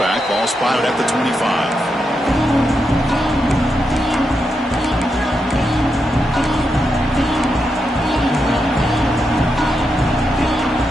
Ball spotted at the 25.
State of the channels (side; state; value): both; normal; correlation 0.85